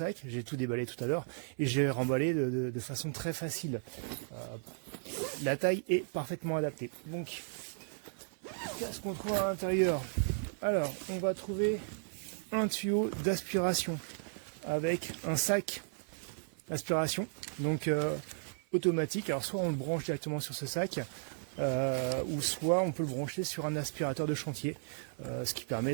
J'ai tout déballé tout à l'heure et j'ai remballé de façon très facile. La taille est parfaitement adaptée. Donc, qu'est-ce qu'on trouve à l'intérieur? Alors, on va trouver un tuyau d'aspiration avec un sac d'aspiration, donc automatique. Alors, soit on le branche directement sur ce sac, ou soit on peut le brancher sur un aspirateur de chantier, ce qui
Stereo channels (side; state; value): left; silent; 54 dB below the other